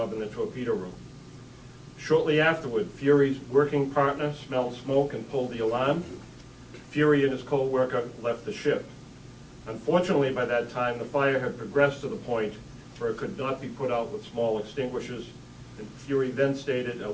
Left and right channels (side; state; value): both; identical; correlation 1.00